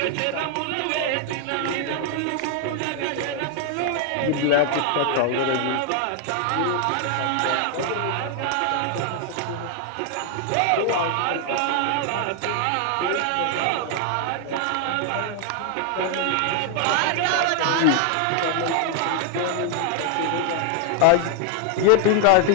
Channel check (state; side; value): different; both; correlation 0.00